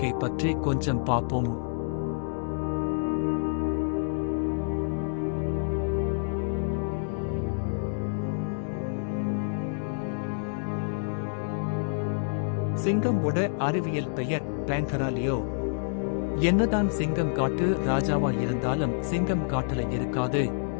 பற்றி கொஞ்சம் பார்ப்போம். சிங்கமோட அறிவியல் பெயர் பேன்தராலியோ. என்னதான் சிங்கம் காட்டு ராஜாவா இருந்தாலும் சிங்கம் காட்டுல இருக்காது.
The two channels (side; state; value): right; silent; digital silence